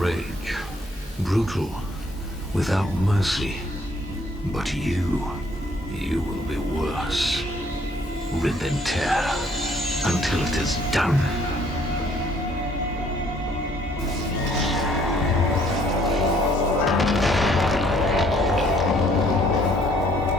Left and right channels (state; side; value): normal; both; correlation 0.63